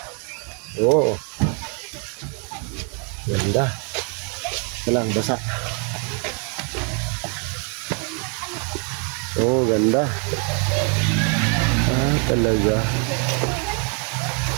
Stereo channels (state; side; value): quieter; left; 38.0 dB